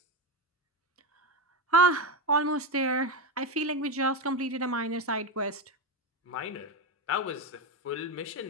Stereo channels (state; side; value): normal; both; correlation 0.13